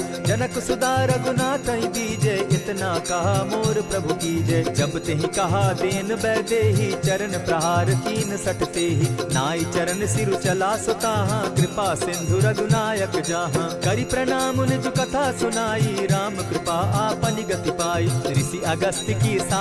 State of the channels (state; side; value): identical; both; correlation 1.00